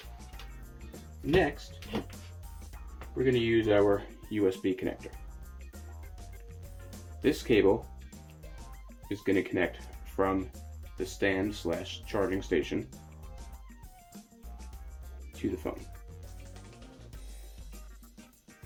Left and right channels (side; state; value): both; identical; correlation 1.00